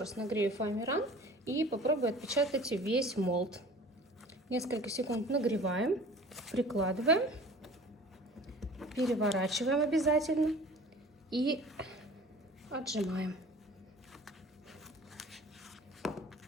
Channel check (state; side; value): normal; both; correlation 0.45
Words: нагрею фоамиран и попробую отпечатать весь молд. Несколько секунд нагреваем, прикладываем, переворачиваем обязательно и отжимаем.